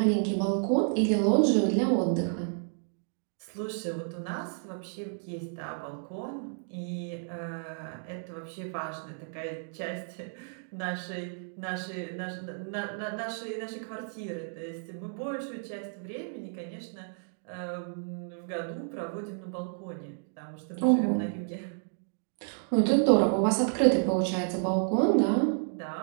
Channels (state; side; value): silent; left; digital silence